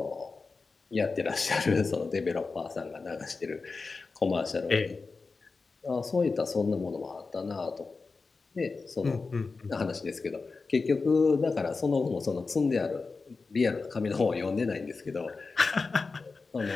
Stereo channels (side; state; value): right; quieter; 4.2 dB